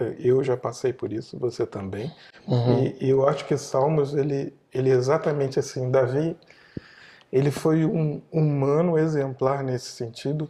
eu já passei por isso, você também. Uhum. E eu acho que Salmos ele ele é exatamente assim. Davi, ele foi um humano exemplar nesse sentido,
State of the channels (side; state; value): both; identical; correlation 1.00